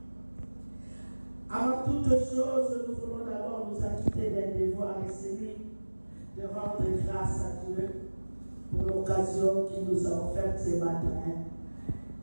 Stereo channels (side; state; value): both; inverted; correlation -1.00